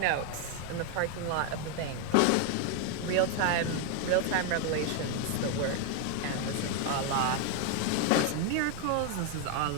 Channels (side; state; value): both; different; correlation 0.01